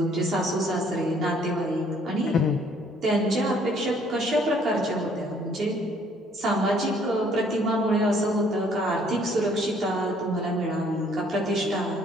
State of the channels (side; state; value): both; normal; correlation 0.62